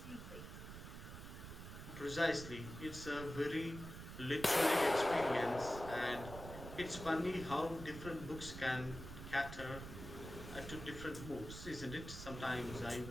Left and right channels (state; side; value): noise; right; rumble, 10 dB below the sound